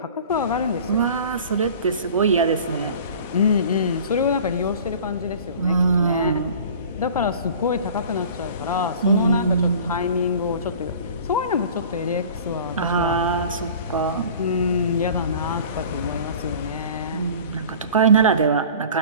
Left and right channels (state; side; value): inverted; both; correlation -0.42